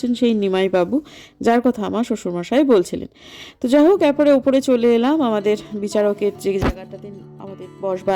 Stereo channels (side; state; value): both; identical; correlation 1.00